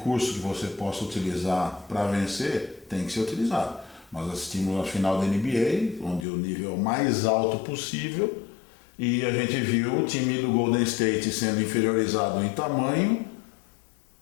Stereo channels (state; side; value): drops out; right; at 6.2 s